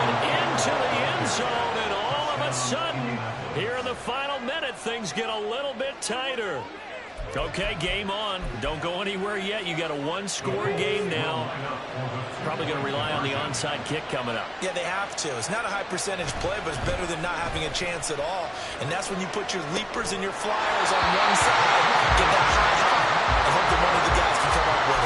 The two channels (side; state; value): both; identical; correlation 1.00